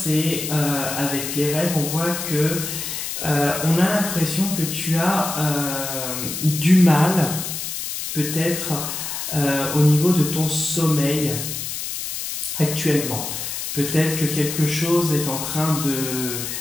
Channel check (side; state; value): left; noise; hiss, 5 dB below the sound